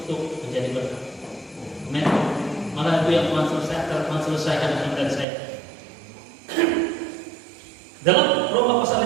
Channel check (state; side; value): drops out; left; at 5.2 s